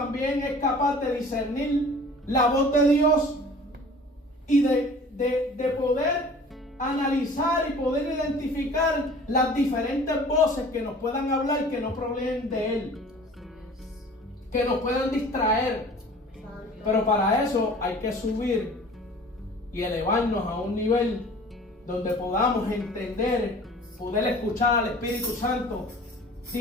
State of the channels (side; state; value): both; normal; correlation 0.46